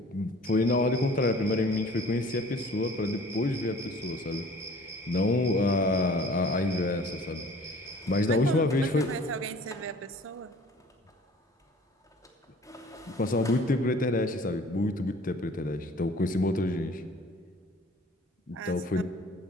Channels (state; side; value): normal; both; correlation 0.49